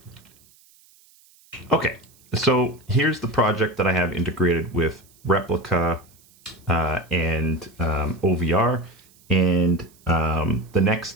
Okay, so here's the project that I have integrated with Replica and OVR. And the next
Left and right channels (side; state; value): right; noise; hiss, 29 dB below the sound